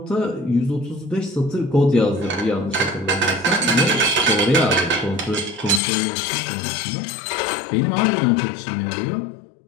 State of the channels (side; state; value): right; drops out; at 5.8 s